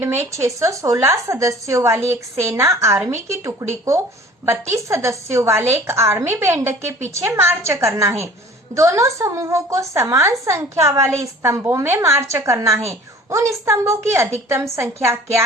में 616 सदस्यों वाली एक सेना आर्मी की टुकड़ी को 32 सदस्यों वाले एक आर्मी बैंड के पीछे मार्च करना है। दोनों समूहों को समान संख्या वाले स्तंभों में मार्च करना है। उन स्तंभों की अधिकतम संख्या क्या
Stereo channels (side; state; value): both; normal; correlation 0.48